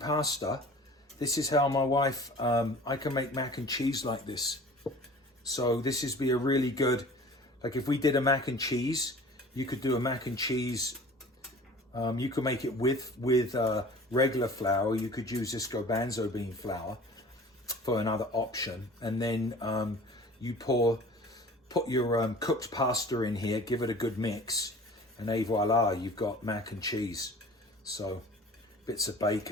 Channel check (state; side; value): normal; both; correlation 0.44